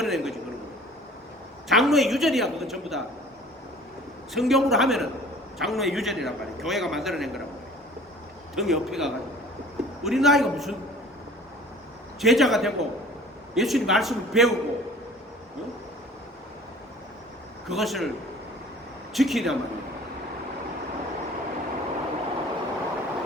거지 그런 거. 장로의 유전이야. 그건 전부 다 성경으로 하면은 장로의 유전이란 말이야. 교회가 만들어낸 거란 말이야. 등에 옆에 가가지고 우리 나이가 무슨 제자가 되고 예수님 말씀을 배우고 그것을 지키란 말이에요.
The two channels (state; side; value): normal; both; correlation 0.47